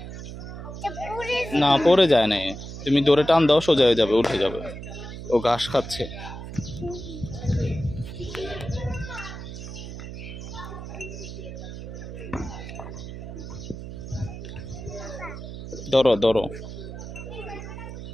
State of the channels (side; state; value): right; noise; hum, 10 dB below the sound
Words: না, পড়ে যায় না, তুমি দৌড়ে টান দাও, সোজা হয়ে যাবে, উঠে যাবে। ও ঘাস খাচ্ছে। ধরো ধরো।